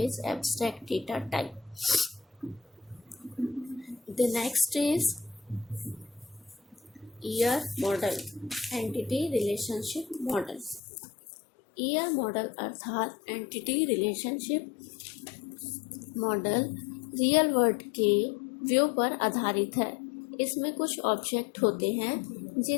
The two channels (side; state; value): right; drops out; at 10.8 s